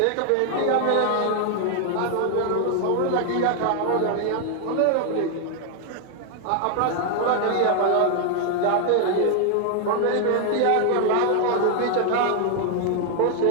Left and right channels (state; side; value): different; both; correlation 0.00